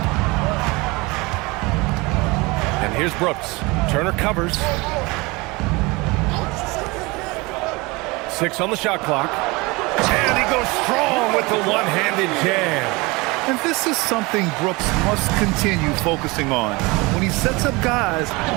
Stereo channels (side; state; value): left; quieter; 24.5 dB